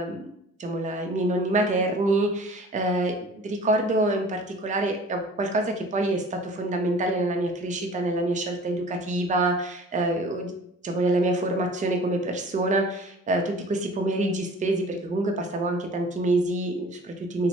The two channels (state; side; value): normal; both; correlation 0.46